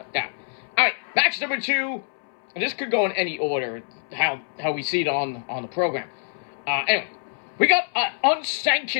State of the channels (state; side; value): silent; right; 62 dB below the other